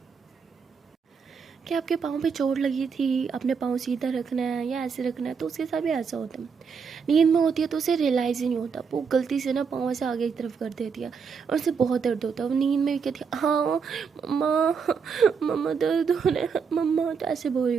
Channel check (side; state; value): left; quieter; 6.0 dB